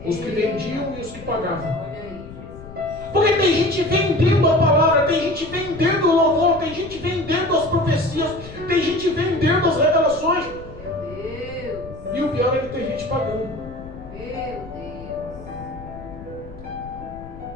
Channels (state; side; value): noise; left; rumble, 15 dB below the sound